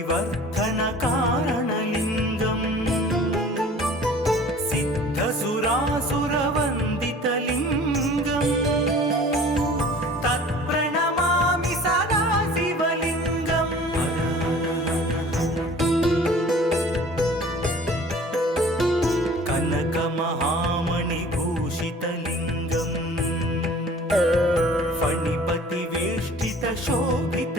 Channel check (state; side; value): normal; both; correlation 0.47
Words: కారణలింగం సిద్ధసురాసురవందితలింగం తత్ప్రణమామి సదా శివలింగం కనకమహామణిభూషితలింగం